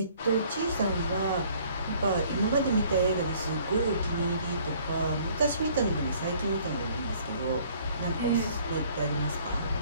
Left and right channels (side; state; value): both; inverted; correlation -0.58